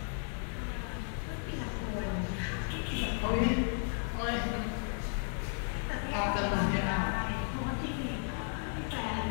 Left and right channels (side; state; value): right; silent; 55 dB below the other